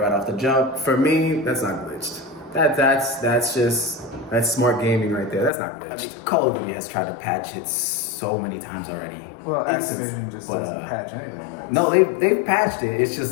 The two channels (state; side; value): drops out; right; at 5.5 s